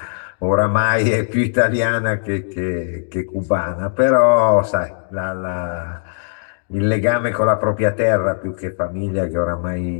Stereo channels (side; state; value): right; silent; digital silence